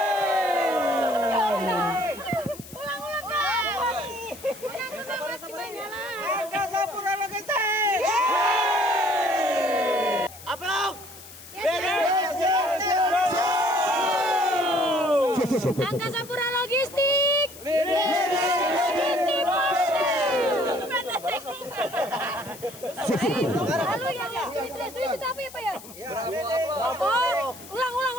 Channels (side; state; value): left; noise; hiss, 17 dB below the sound